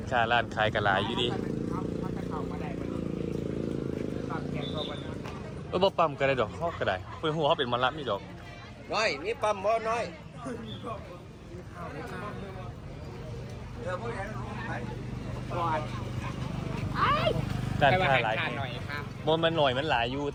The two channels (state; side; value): identical; both; correlation 1.00